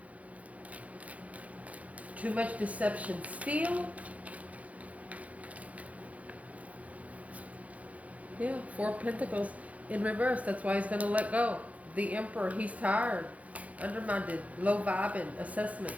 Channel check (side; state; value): left; late; 0.068 ms